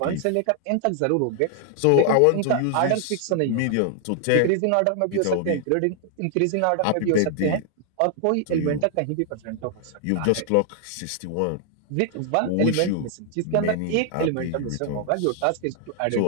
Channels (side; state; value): both; different; correlation 0.00